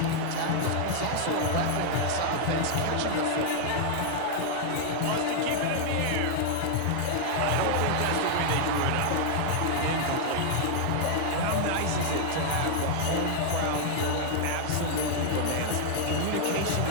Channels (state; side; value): different; both; correlation 0.00